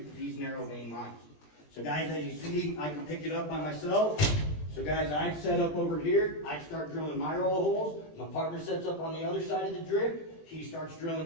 for these narrow vein mines. So guys, as you see, I can pick it up by myself. So guys, I'd set up over here, I'd start drilling my roll of holes, my partner sets up on the other side of the drip, he starts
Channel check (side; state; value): right; late; 20 ms